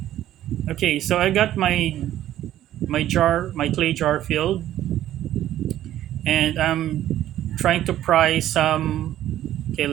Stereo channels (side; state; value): left; quieter; 12.7 dB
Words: okay, so I got my clay jar filled, and I'm trying to pry some. Okay,